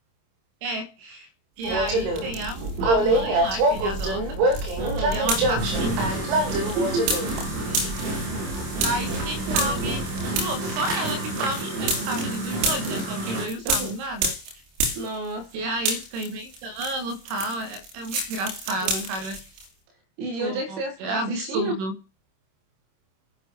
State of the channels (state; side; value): late; left; 26 ms